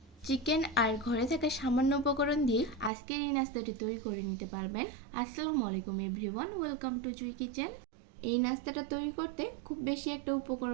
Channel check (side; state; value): left; drops out; at 2.9 s